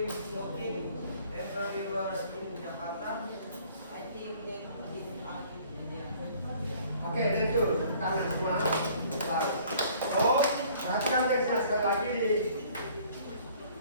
smoking everywhere in Jakarta? I think that is a good idea. Oke, thank you. Tangan semua. Oh, perhatikan teksnya sekali lagi di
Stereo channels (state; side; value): inverted; both; correlation -0.55